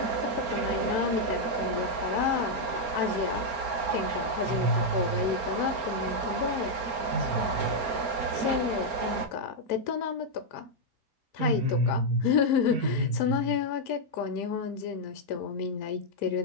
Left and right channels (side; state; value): left; late; 4.3 ms